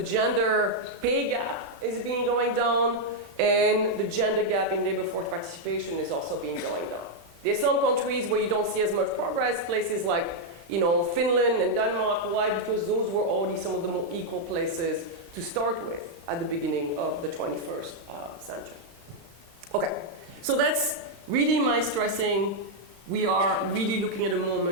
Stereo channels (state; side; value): late; left; 35 ms